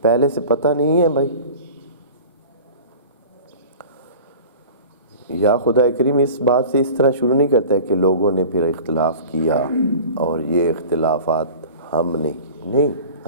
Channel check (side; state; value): both; inverted; correlation -0.39